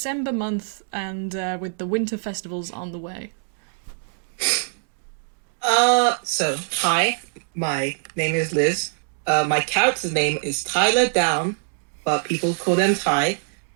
month and with the winter festivals on the way? So, hi, my name is Liz. My character's name is Tyler Down, but people call them Ty.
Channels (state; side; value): silent; left; digital silence